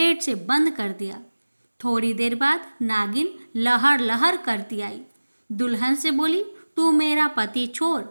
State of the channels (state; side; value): inverted; both; correlation -1.00